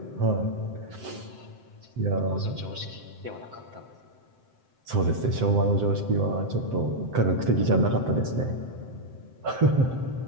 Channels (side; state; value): left; late; 7.7 ms